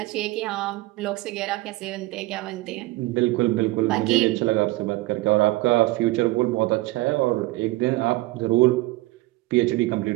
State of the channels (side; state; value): left; quieter; 20.0 dB